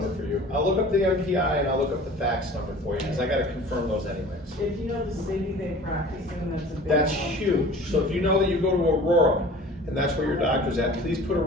for you. I'll look up the MPI and I'll look up the fax number for you, because I gotta confirm those anyways. If you know the city they practice in, that's a big. That's help. huge. So if you know that you go to Aurora, and that's where your doctor's at, please put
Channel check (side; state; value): both; normal; correlation 0.44